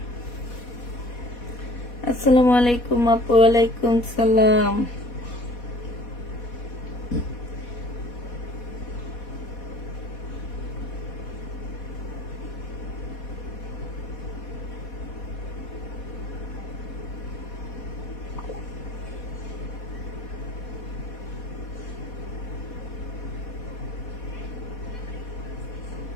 আসসালামু আলাইকুম আপু। ওয়ালাইকুম সালাম।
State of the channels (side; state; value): right; late; 4.2 ms